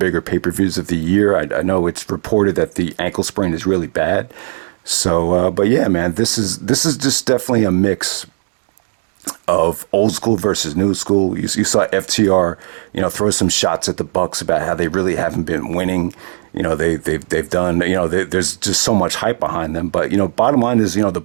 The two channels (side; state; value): left; silent; 68 dB below the other